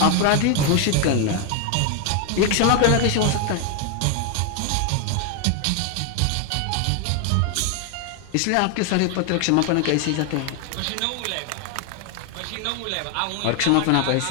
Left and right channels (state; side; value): different; both; correlation 0.01